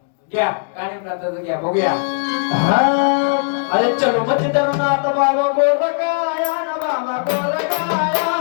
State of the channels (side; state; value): right; silent; digital silence